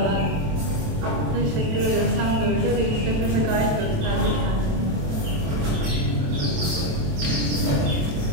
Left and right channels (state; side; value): late; left; 27 ms